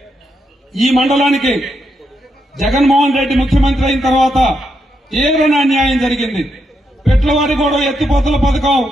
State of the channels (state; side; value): normal; both; correlation 0.81